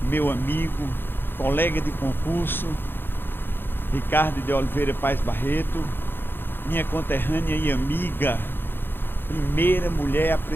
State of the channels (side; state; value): right; late; 0.10 ms